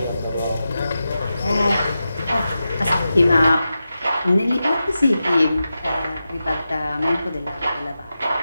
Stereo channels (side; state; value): both; inverted; correlation -0.91